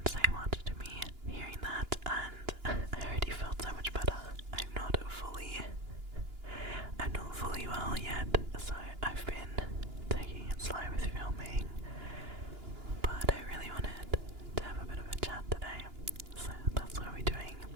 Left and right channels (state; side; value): late; left; 2.9 ms